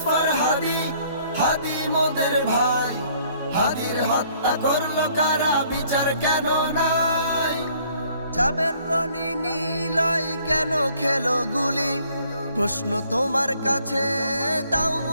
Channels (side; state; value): both; inverted; correlation -0.61